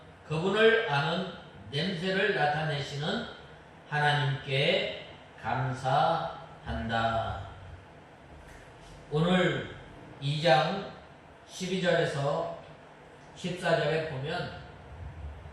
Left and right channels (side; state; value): both; identical; correlation 1.00